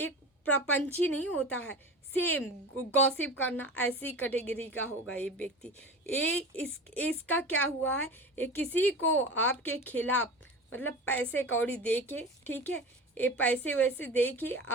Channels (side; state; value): both; normal; correlation 0.32